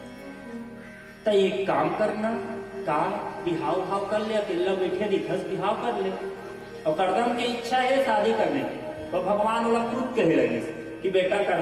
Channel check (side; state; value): both; identical; correlation 1.00